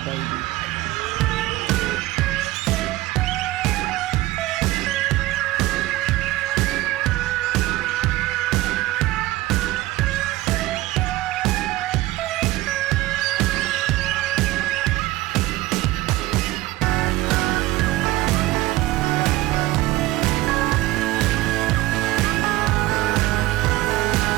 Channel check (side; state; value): left; quieter; 17.6 dB